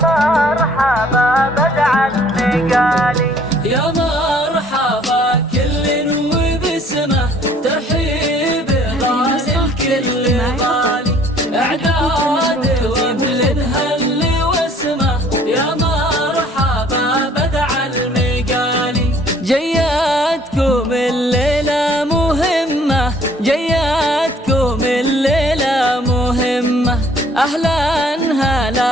مرحبا بدع النقالي يا مرحبا كل وبسمه ترحيب غالي الكل غالي اعداد وغل الهل واسمه يا مرحبا بدع المقالي. جياتكم الليلة مهمة جياتكم الليلة مهمة أهلا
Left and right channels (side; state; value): both; normal; correlation 0.58